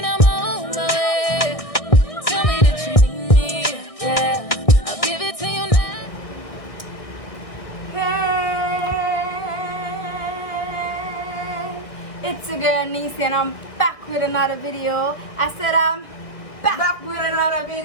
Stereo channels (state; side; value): late; right; 1.6 ms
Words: I'm on my way. Tell me that you need me. Yeah, I'll give it to you now. Hey, it's your girl Nisi and I'm back with another video. I said I'm back with another